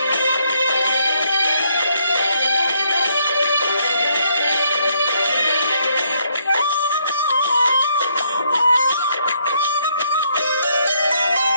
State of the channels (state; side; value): inverted; both; correlation -0.71